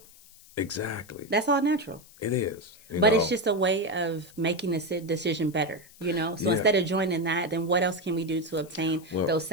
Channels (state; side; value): noise; left; hiss, 23 dB below the sound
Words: Exactly. That's all natural. It is. But it's just a way of making the decision better, So Yeah. instead of joining that, then what else can we do to obtain Well, those